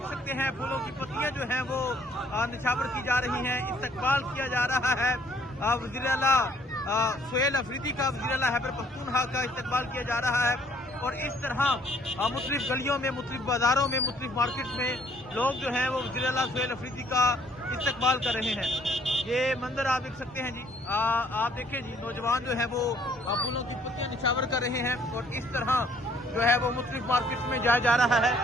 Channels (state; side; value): normal; both; correlation 0.62